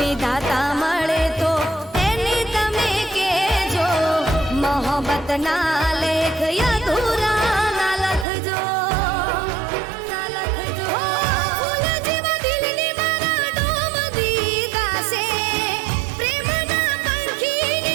મળે તો એને તમે કહેજો, મોહબ્બતના લેખ અધૂરા ના લખજો. હો ફૂલ જેવા દિલની મારા ડોમ દીધા છે, પ્રેમના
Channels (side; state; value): left; drops out; at 8.2 s